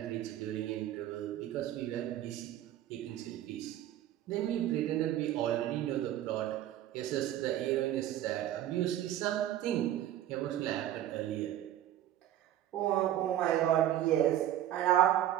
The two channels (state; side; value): quieter; left; 12.4 dB